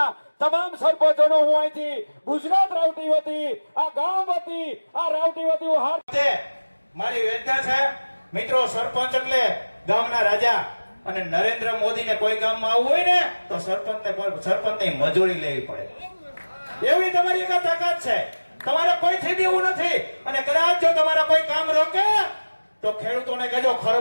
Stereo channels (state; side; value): inverted; both; correlation -1.00